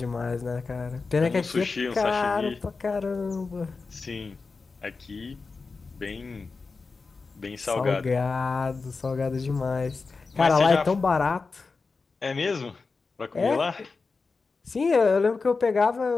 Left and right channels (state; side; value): quieter; right; 4.3 dB